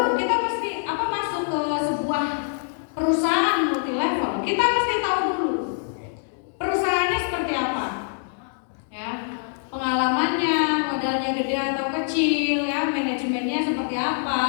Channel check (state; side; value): silent; right; digital silence